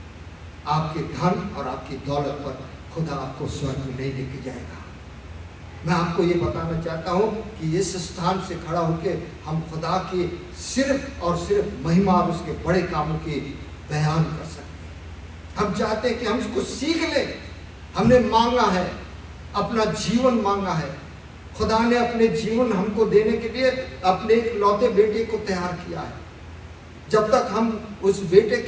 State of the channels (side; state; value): both; identical; correlation 1.00